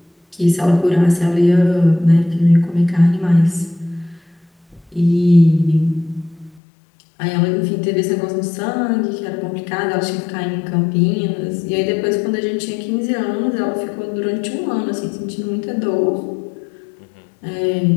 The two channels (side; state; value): right; drops out; at 6.6 s